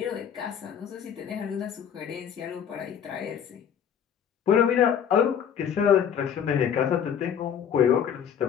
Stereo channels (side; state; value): right; quieter; 8.4 dB